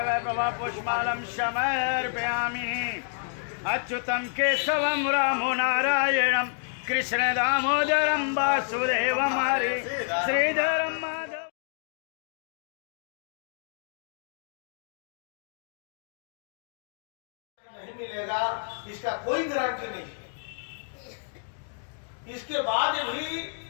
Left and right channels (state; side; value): silent; right; digital silence